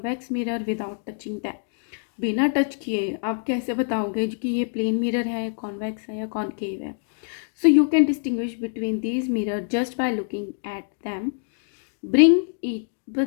mirror without touching them. बिना टच किए आप कैसे बताओगे कि ये प्लेन मिरर है, कॉन्वेक्स है या कॉनकेव है। So you can distinguish between these mirror just by looking at them. Bring each, बस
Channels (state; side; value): silent; right; digital silence